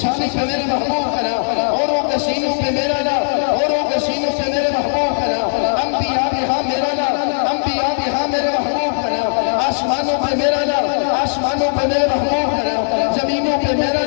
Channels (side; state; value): right; silent; digital silence